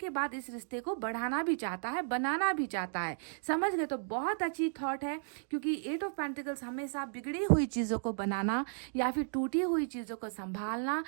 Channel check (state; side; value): silent; left; digital silence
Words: बाद इस रिश्ते को बढ़ाना भी चाहता है, बनाना भी चाहता है। समझ गए। तो बहुत अच्छी थॉट है, क्योंकि 8 ऑफ पेंटिकल्स हमेशा बिगड़ी हुई चीजों को बनाना या फिर टूटी हुई चीजों को संभालना,